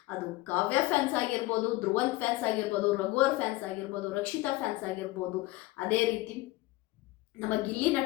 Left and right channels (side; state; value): right; quieter; 19.3 dB